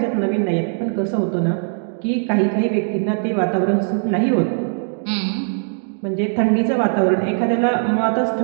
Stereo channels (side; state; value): left; silent; digital silence